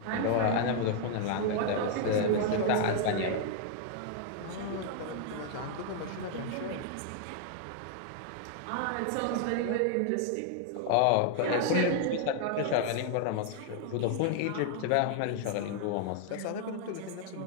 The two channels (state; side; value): different; both; correlation 0.00